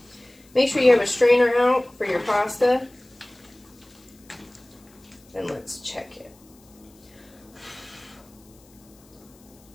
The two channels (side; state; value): left; noise; hiss, 28 dB below the sound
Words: Make sure you have a strainer out for your pasta. And let's check it.